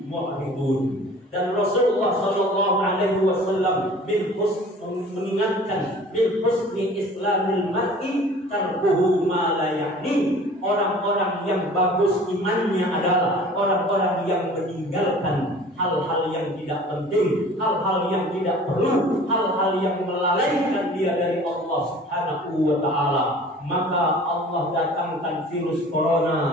mu'ridun. Dan Rasulullah sallallahu alaihi wasallam mengingatkan bil husni islamil mar'i tarkuhu ma la ya'ni. Orang-orang yang bagus imannya adalah orang-orang yang meninggalkan hal-hal yang tidak penting, hal-hal yang tidak perlu, hal-hal yang melalaikan dia dari Allah Subhanahu wa ta'ala. Maka Allah datangkan virus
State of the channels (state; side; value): normal; both; correlation 0.46